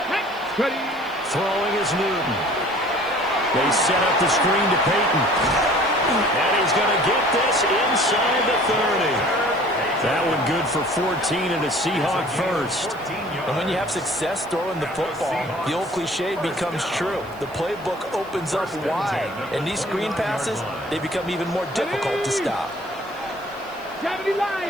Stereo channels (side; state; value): right; noise; hiss, 26 dB below the sound